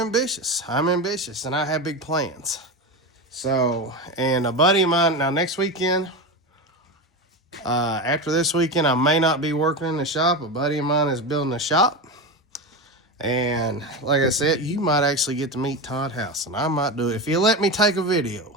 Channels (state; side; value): normal; both; correlation 0.20